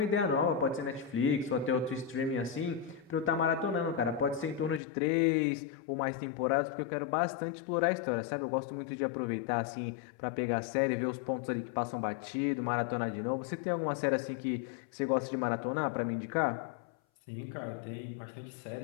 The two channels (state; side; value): drops out; right; at 4.8 s